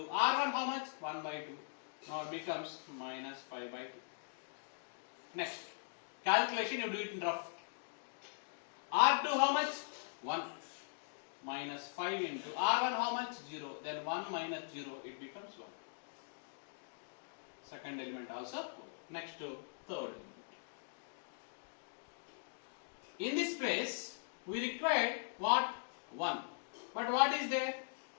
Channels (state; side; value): silent; right; digital silence